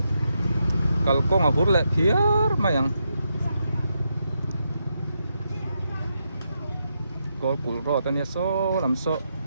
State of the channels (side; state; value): both; inverted; correlation -0.83